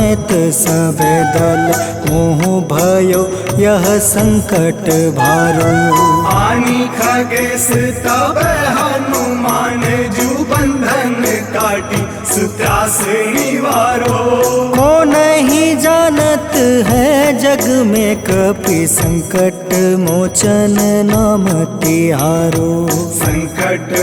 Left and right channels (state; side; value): identical; both; correlation 1.00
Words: सब दल मोह भयो यह संकट भारो। आनी खगेश तब हनुमान जू बंधन काटी सुत्रास निवारो। को नहीं जानत है जग में कपि संकट मोचन नाम तिहारो। संकट